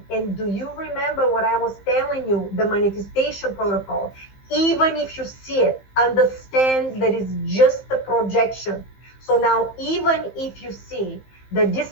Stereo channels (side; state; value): right; late; 15 ms